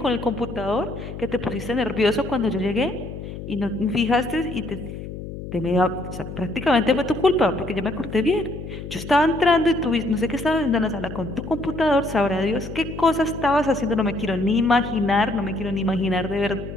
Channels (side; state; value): left; noise; hum, 10 dB below the sound